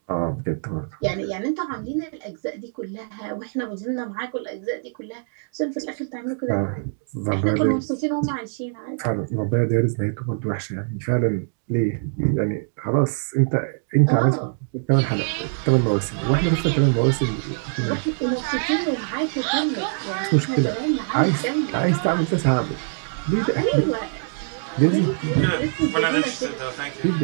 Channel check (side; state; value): left; silent; digital silence